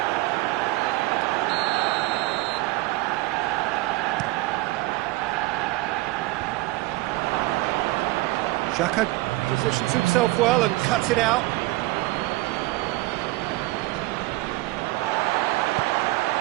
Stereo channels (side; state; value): left; quieter; 19.9 dB